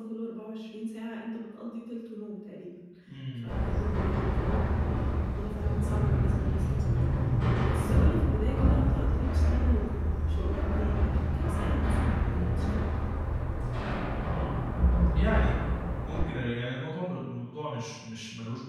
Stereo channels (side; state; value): both; identical; correlation 1.00